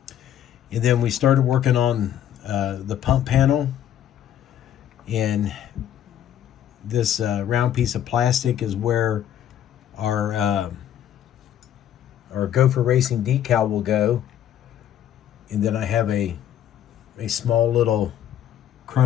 And then we started working on the pump panel. And this round piece of plastic is where our Gopher Racing decal will go. And then I have a small little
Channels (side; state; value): right; quieter; 10.6 dB